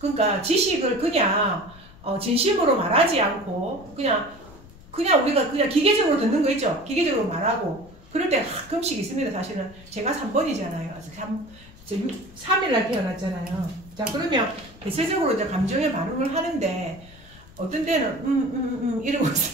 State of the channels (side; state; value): left; noise; rumble, 22 dB below the sound